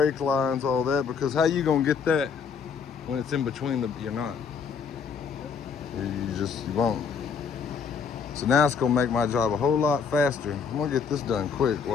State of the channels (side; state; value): right; quieter; 6.1 dB